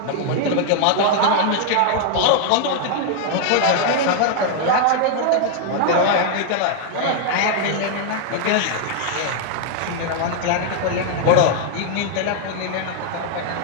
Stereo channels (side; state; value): both; different; correlation 0.00